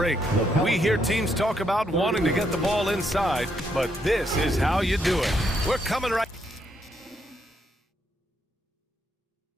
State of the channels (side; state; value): both; normal; correlation 0.76